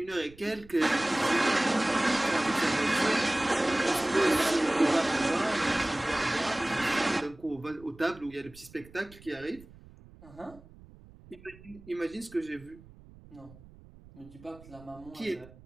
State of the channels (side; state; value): right; noise; rumble, 22 dB below the sound